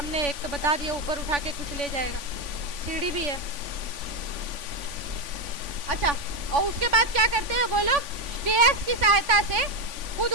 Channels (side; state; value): left; late; 3.5 ms